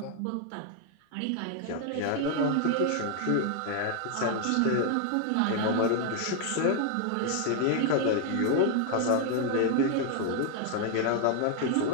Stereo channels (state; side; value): different; both; correlation 0.00